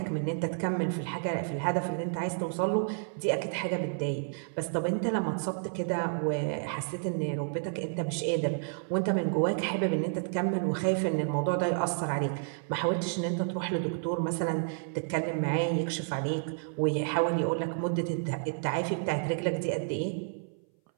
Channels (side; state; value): left; silent; 57 dB below the other